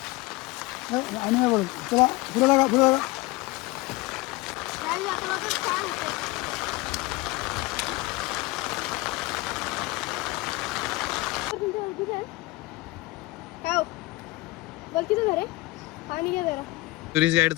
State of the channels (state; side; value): quieter; right; 21.3 dB